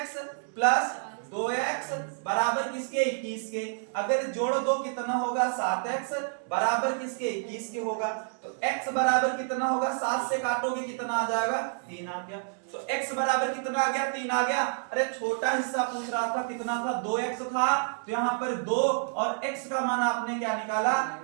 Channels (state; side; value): silent; left; digital silence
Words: प्लस 2x बराबर किसके? 21 के। अगर जोड़ दो कितना होगा? 7x बराबर किसके? 21 के होगा। तो x बराबर कितना होगा? 7 से काटोगे कितना आ जाएगा? 3 आ गया। तो x बराबर कितना आ गया? 3 आ गया। अरे छोटा हिस्सा पूछ रहा था, कितना था? 2x था। तो यहाँ पर 2 और x का मान आपने क्या निकाला?